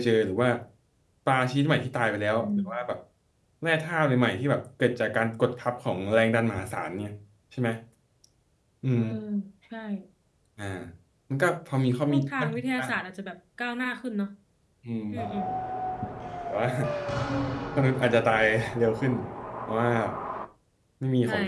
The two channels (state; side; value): identical; both; correlation 1.00